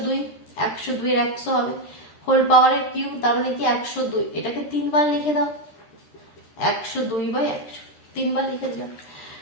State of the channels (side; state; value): right; late; 13 ms